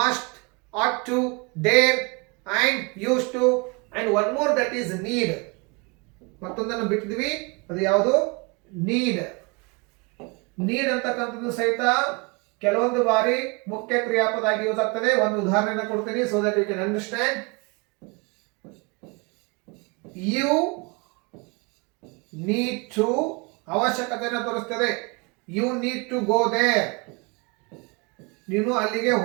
ought to, dare and used to and one more that is need. ಮತ್ತೊಂದನ್ನು ಬಿಟ್ಟಿದ್ವಿ, ಅದು ಯಾವುದು? ನೀಡ್. ನೀಡ್ ಅಂತಕ್ಕಂಥದ್ದು ಸಹಿತ ಕೆಲವೊಂದು ಬಾರಿ ಮುಖ್ಯ ಕ್ರಿಯಾಪದ ಆಗಿ ಯೂಸ್ ಆಗ್ತದೆ. ಒಂದು ಉದಾಹರಣೆಯನ್ನು ಕೊಡ್ತೀನಿ so that you can understand. You need to ಅವಶ್ಯಕತೆಯನ್ನು ತೋರಿಸ್ತದೆ. You need to go there. ನೀನು ಅಲ್ಲಿಗೆ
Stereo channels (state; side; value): quieter; left; 29.2 dB